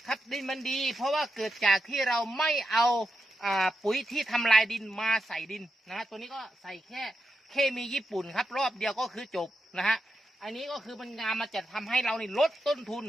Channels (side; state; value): both; normal; correlation 0.87